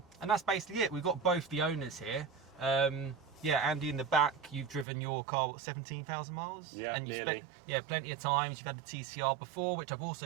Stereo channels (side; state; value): left; drops out; at 4.9 s